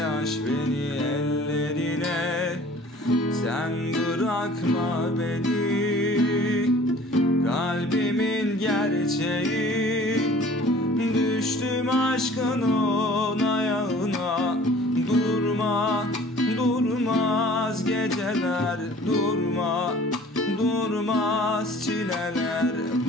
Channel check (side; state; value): both; normal; correlation 0.49